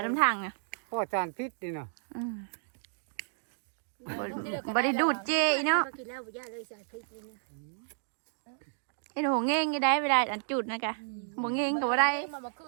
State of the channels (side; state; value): left; silent; digital silence